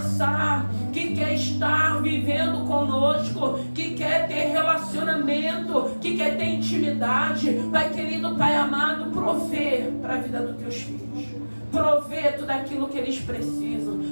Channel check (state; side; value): inverted; both; correlation -1.00